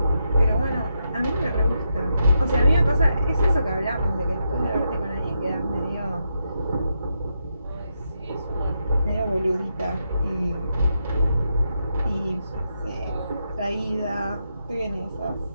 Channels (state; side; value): inverted; both; correlation -0.83